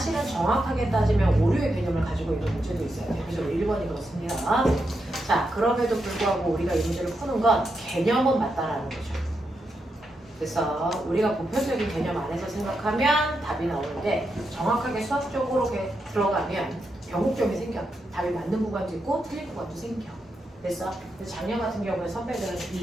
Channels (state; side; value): normal; both; correlation 0.84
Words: 정확하게 따지면 오류의 개념을 가지고 있는 문제도 있어요. 대표적으로 1번이 그렇습니다. 자, 그럼에도 불구하고 우리가 이 문제를 푸는 건 개념은 맞다라는 거죠. 그래서 우리가 보편적인 개념 안에서 생각하면 답이 나오는데 정확하게 수학적으로 들어가면 변곡점이 생겨. 답이 맞는 구간도 있고 틀린 구간도 생겨. 그래서 작년 같은 경우에 선배들은